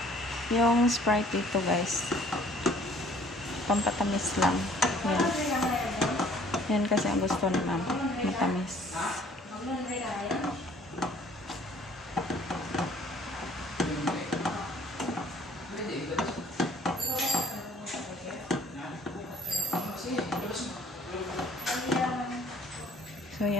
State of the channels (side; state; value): both; normal; correlation 0.56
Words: Yung Sprite dito guys, pampatamis lang. Yan. Yan kasi ang gusto ni ma'am, matamis. So